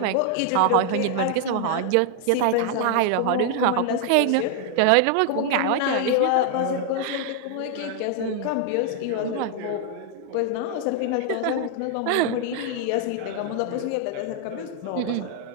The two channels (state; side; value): different; both; correlation 0.00